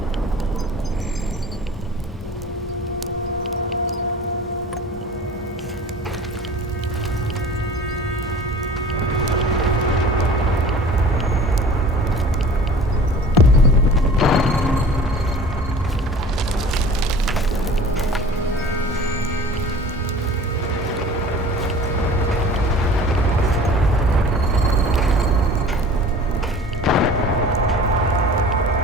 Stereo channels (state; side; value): normal; both; correlation 0.43